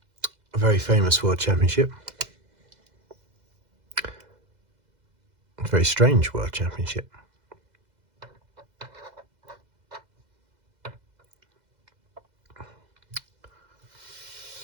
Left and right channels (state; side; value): late; left; 2.0 ms